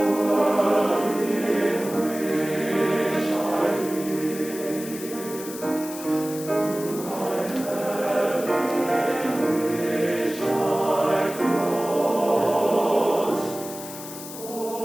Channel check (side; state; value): left; noise; hiss, 12 dB below the sound